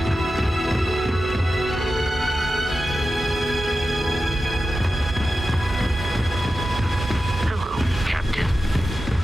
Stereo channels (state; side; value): normal; both; correlation 0.92